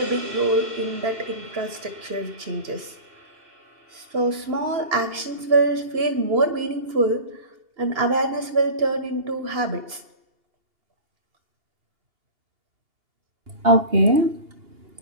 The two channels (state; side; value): late; left; 2.8 ms